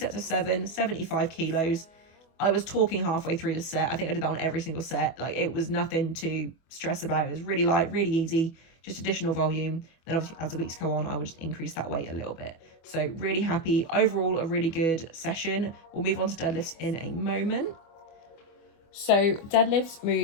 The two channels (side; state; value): right; late; 24 ms